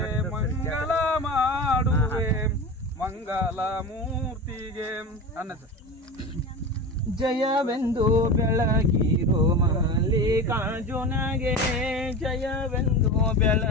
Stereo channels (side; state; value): both; normal; correlation 0.28